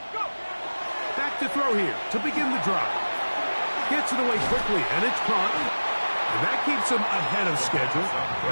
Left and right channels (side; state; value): both; inverted; correlation -1.00